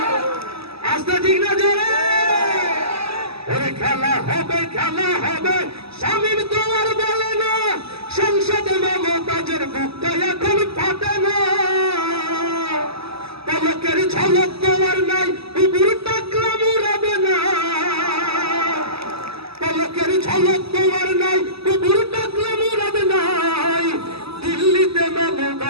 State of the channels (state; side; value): late; left; 0.77 ms